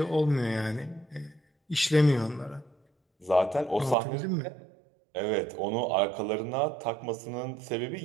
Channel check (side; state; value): left; drops out; at 4.0 s